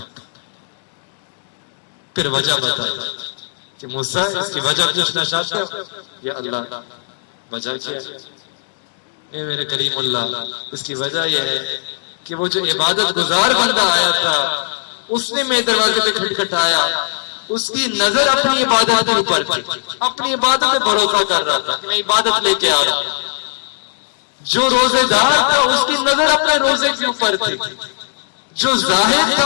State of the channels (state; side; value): silent; right; 67 dB below the other